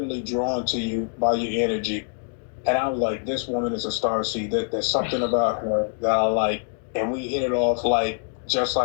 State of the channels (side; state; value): right; silent; 62 dB below the other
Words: drawn to you by your energy. And I was like, this woman is a star seed. There's something about her that I like. And we hit it off like just